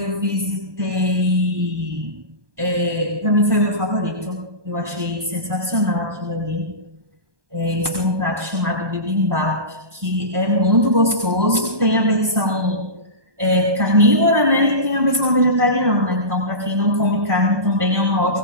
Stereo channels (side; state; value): left; late; 1.2 ms